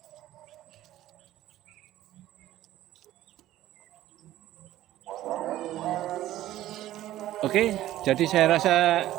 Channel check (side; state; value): left; quieter; 14.2 dB